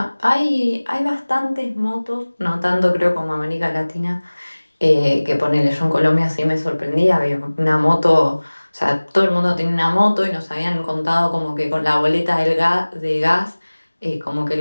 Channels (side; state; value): both; inverted; correlation -1.00